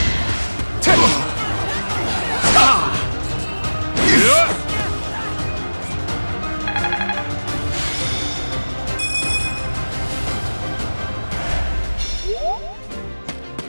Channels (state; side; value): inverted; both; correlation -1.00